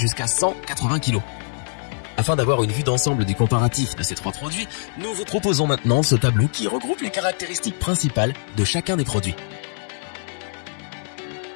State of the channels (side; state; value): right; silent; digital silence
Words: 180 kg. Afin d'avoir une vue d'ensemble du comparatif de ces 3 produits, nous vous proposons maintenant ce tableau qui regroupe les caractéristiques principales de chacun des produits.